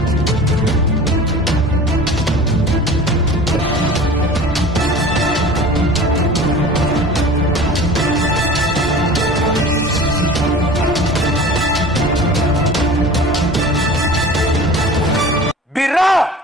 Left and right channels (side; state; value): both; normal; correlation 0.40